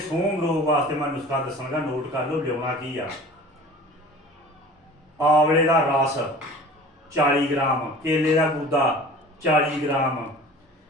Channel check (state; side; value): normal; both; correlation 0.42